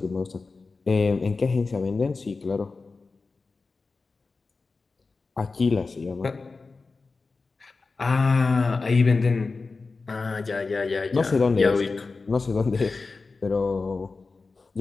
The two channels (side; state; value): right; quieter; 4.1 dB